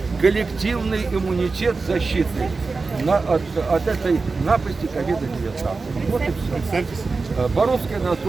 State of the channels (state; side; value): quieter; left; 4.1 dB